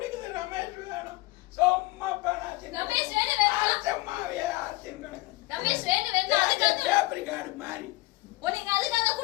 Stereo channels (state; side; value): quieter; right; 20.5 dB